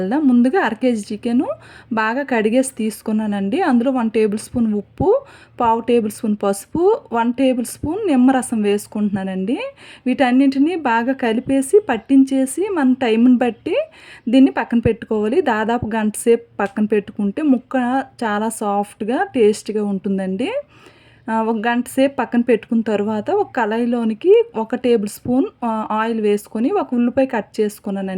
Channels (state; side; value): identical; both; correlation 1.00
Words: ముందుగా అర కేజీ చికెను బాగా కడిగేసి తీసుకున్నానండి. అందులో 1 టేబుల్ స్పూన్ ఉప్పు, పావు టేబుల్ స్పూన్ పసుపు, 1 టేబుల్ స్పూన్ నిమ్మరసం వేసుకుంటున్నానండి. వీటన్నింటిని బాగా కలిపేసి పట్టించేసి మన టైంని బట్టి దీన్ని పక్కన పెట్టుకోవాలి. దాదాపు గంట సేపు పక్కన పెట్టుకుంటే ముక్క చాలా సాఫ్ట్‌గా, టేస్ట్‌గా ఉంటుందండి. ఒక గంట సేపు పక్కన పెట్టుకున్న తరువాత ఒక కళాయిలోనికి ఒక టేబుల్ స్పూన్ ఆయిల్ వేసుకొని ఒక ఉల్లిపాయ కట్